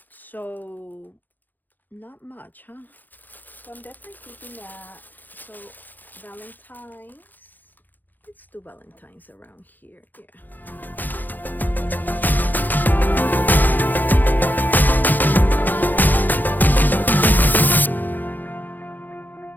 So not much, huh? So I'm definitely keeping that. So Valentine's, let's do Valentine's around here. Yeah.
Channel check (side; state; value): right; late; 0.086 ms